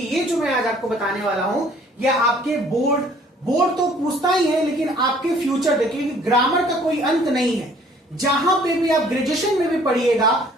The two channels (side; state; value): both; normal; correlation 0.57